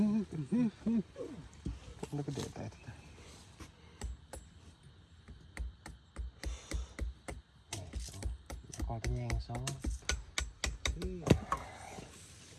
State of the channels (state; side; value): identical; both; correlation 1.00